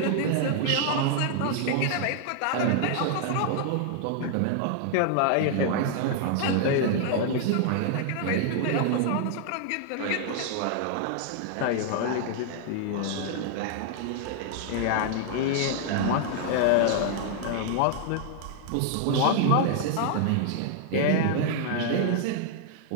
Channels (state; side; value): different; both; correlation 0.00